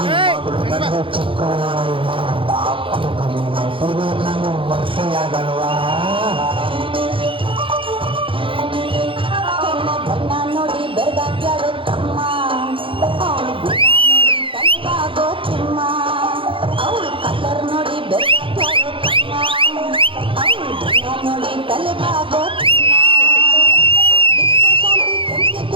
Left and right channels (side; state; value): left; late; 0.25 ms